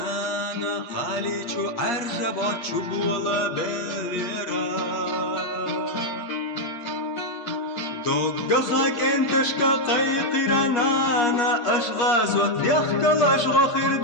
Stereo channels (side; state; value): right; late; 8.5 ms